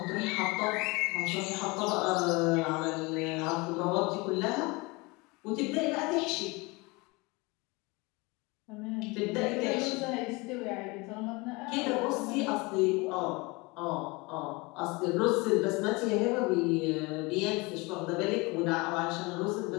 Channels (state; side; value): quieter; right; 25.5 dB